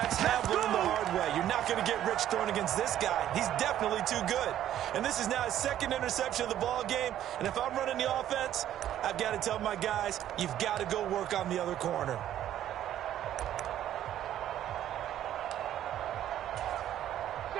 have learned the hard way. You're not going to get rich throwing against this guy. He's definitely too good. And this is now his second interception of the ball game. And if I'm running the offense, I've got to tell my guys, you've got to go work on the other corner.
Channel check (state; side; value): quieter; left; 11.7 dB